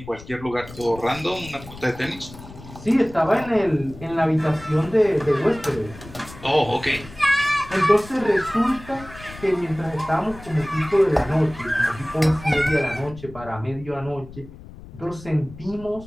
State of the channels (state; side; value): noise; left; rumble, 17 dB below the sound